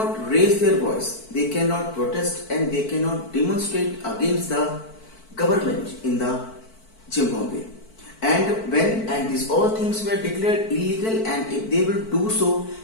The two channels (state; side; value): late; right; 4.5 ms